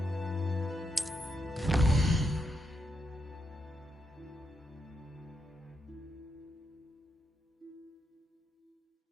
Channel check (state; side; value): normal; both; correlation 0.81